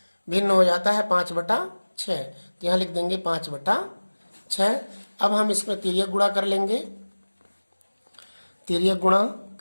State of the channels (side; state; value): both; inverted; correlation -1.00